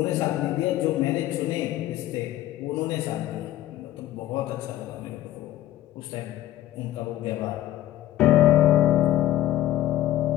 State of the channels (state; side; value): quieter; right; 14.0 dB